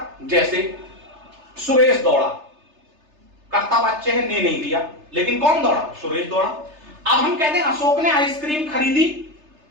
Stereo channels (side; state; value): left; late; 3.3 ms